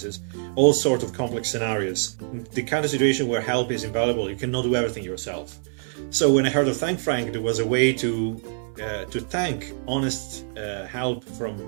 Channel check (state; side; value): silent; left; 62 dB below the other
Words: all sorts of complex scenarios. The kind of situation where help is invaluable, you cannot do everything yourself. So when I heard of ThankFrank, there was a way to thank honest help